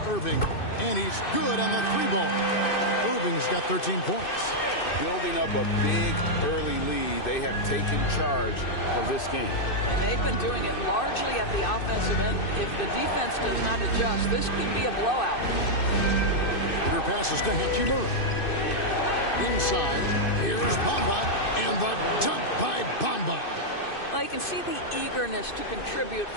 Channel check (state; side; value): late; right; 2.6 ms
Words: Irving. And he's good on the 3-ball. Irving's got 13 points. Building up a big early lead. They have taken charge of this game. And they've been doing it largely at the offensive end. If the defense does not adjust, this could be a blowout. Peter passes to Hachimura. Inside, here's Bamba, and the dunk by Bamba. Well, you can see the eagerness to contribute